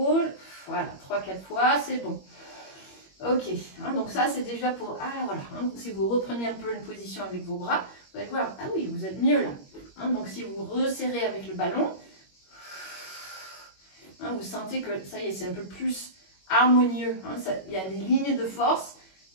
Voilà, 3-4 fois, c'est bon. Ok, donc ça c'est déjà pour... Ah voilà, si vous reprenez un peu une position avec vos bras, vous allez voir, ah oui, vous êtes mieux là. Donc si vous resserrez avec le ballon, vous sentez que ça y est, c'est un peu plus harmonieux. Il y a des lignes de force.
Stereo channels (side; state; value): right; late; 21 ms